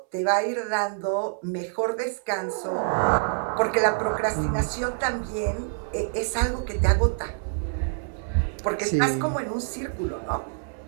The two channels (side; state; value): left; silent; 61 dB below the other